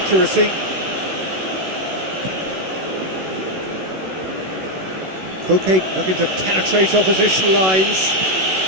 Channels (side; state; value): left; late; 16 ms